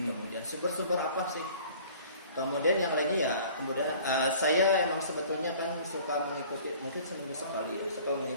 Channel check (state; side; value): inverted; both; correlation -0.49